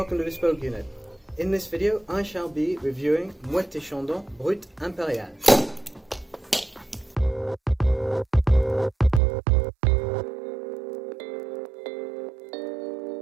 to Bespoke Unit. In this video I shall be reviewing Moët Chandon Brut Impérial.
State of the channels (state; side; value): drops out; left; at 9.2 s